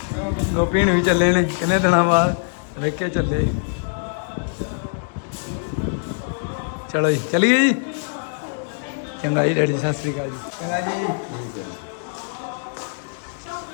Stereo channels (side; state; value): right; silent; 64 dB below the other